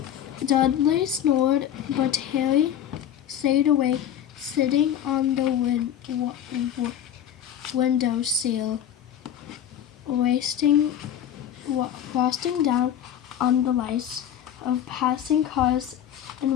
Dudley snored, but Harry stayed awake, sitting on the window sill, frosting down on the lights of passing cars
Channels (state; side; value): quieter; right; 10.1 dB